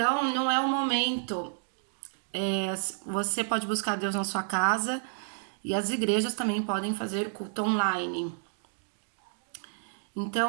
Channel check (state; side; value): silent; left; digital silence